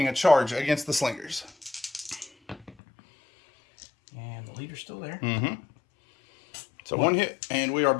a charge against the Slingers. And the leader's still there. Mm-hmm. So 1 hit, and we are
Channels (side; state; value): right; drops out; at 2.8 s